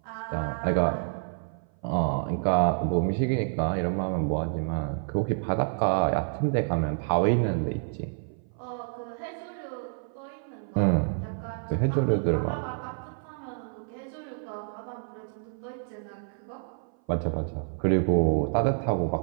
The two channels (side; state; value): left; silent; 57 dB below the other